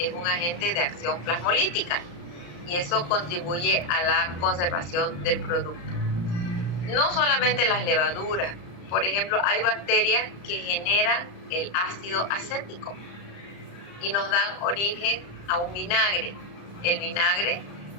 un agente de acción plasmolítica y eso contribuye a la conservación del producto. No solamente las levaduras, por ejemplo, hay bacterias que generan el ácido acético y nos dan origen a un vinagre. El vinagre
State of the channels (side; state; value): right; late; 34 ms